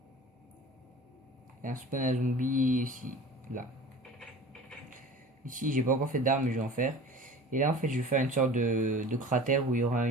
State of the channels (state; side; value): normal; both; correlation 0.39